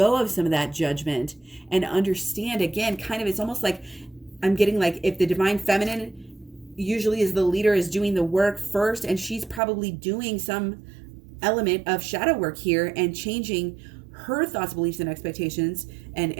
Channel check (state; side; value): drops out; left; at 9.6 s